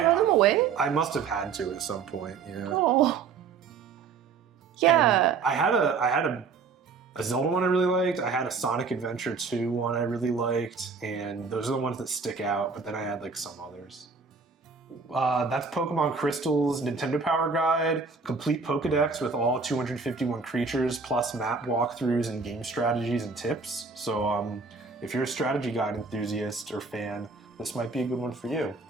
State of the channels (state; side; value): quieter; left; 5.0 dB